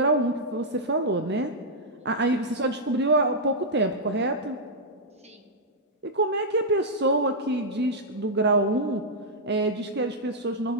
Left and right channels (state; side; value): normal; both; correlation -0.07